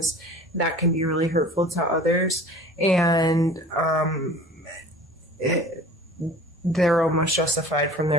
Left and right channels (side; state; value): both; normal; correlation 0.43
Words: that can be really hurtful to others. And they're almost justified from